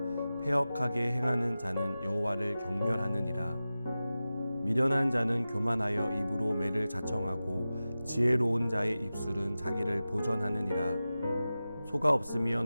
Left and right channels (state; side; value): inverted; both; correlation -0.95